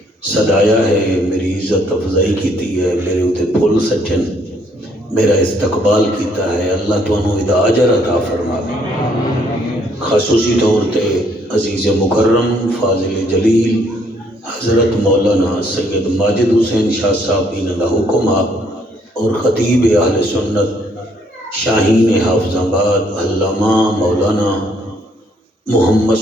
صدایا ہے، میری عزت افضائی کیتی ہے، میرے اتے پھول سچن، میرا استقبال کیتا ہے۔ اللہ تانوں ادا اجر عطا فرماوے۔ خصوصی طور تے عزیز مکرم فاضل جلیل حضرت مولانا سید ماجد حسین شاہ صاحب انہاں دا حکم اور خطیب اہل سنت شاہین حافظ آباد علامہ مولانا محمد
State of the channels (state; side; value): normal; both; correlation 0.67